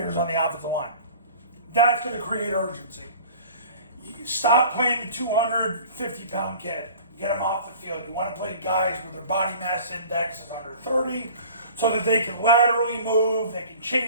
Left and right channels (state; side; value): inverted; both; correlation -0.44